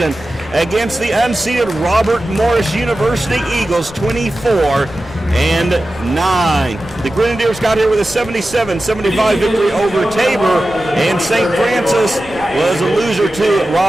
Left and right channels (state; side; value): noise; left; rumble, 19 dB below the sound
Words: against the unseeded Robert Morris University Eagles, 24-9. The Grenadiers got here with a 77-75 victory over Tabor, and St. Francis was a loser to